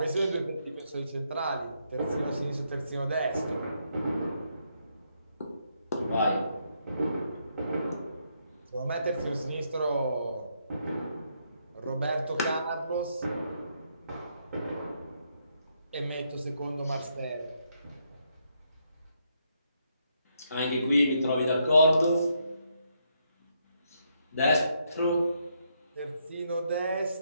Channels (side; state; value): both; inverted; correlation -0.77